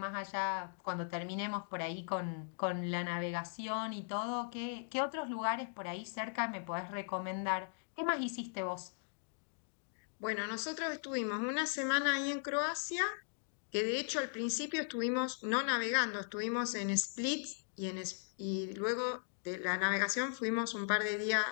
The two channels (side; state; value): right; silent; digital silence